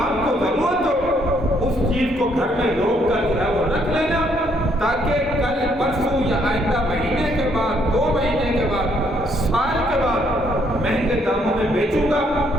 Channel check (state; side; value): normal; both; correlation 0.70